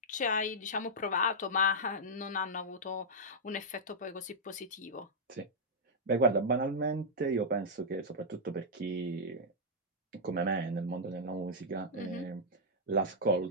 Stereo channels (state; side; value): normal; both; correlation -0.07